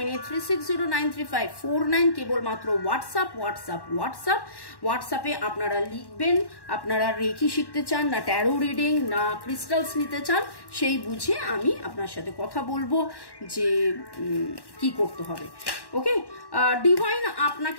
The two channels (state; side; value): late; right; 1.1 ms